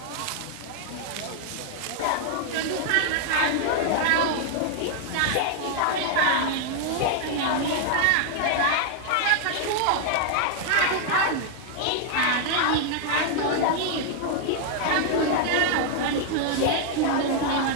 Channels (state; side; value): different; both; correlation 0.00